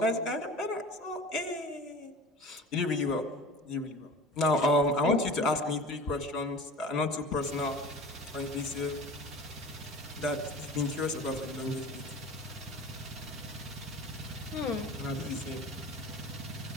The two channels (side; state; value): both; normal; correlation 0.38